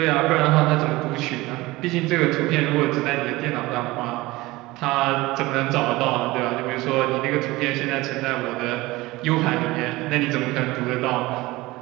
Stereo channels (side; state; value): left; quieter; 20.1 dB